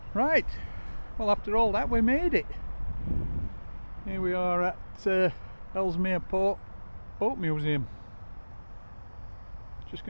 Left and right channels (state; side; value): inverted; both; correlation -1.00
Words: Right, well, after all that we made it. Here we are at Ellesmere Port Boat Museum. Just